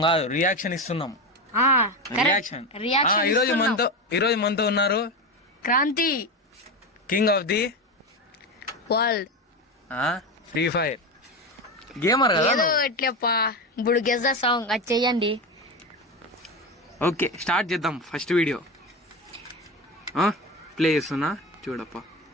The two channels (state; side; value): normal; both; correlation 0.19